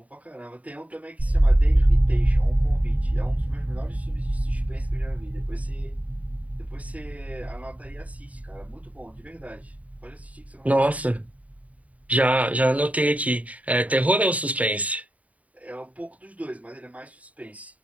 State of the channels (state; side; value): late; left; 0.069 ms